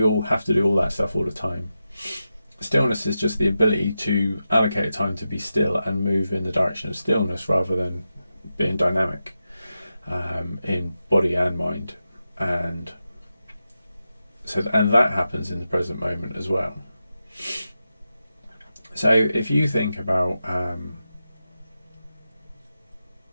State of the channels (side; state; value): both; inverted; correlation -0.90